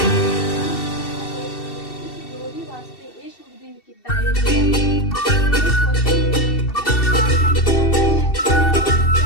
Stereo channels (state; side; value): late; right; 2.7 ms